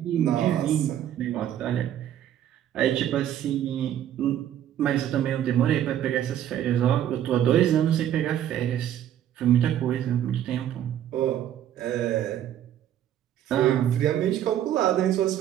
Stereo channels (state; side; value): quieter; left; 11.0 dB